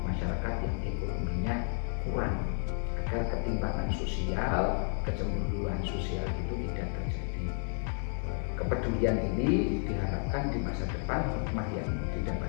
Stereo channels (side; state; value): right; silent; 57 dB below the other